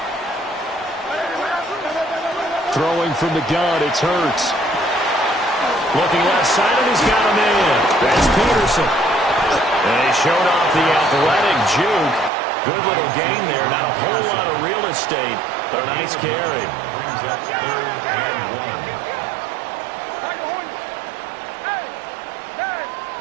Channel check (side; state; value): left; drops out; at 12.3 s